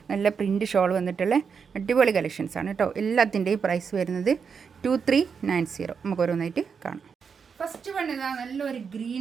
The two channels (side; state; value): left; quieter; 6.1 dB